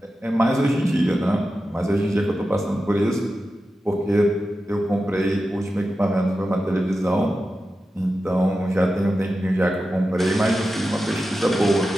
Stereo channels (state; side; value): normal; both; correlation 0.92